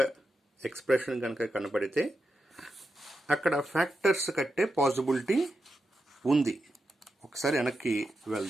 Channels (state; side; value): normal; both; correlation 0.88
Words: ఎక్స్ప్రెషన్ కనుక కనపడితే అక్కడ ఫ్యాక్టర్స్ కట్టే పాసిబిలిటీ ఉంది. ఒకసారి వెనక్కి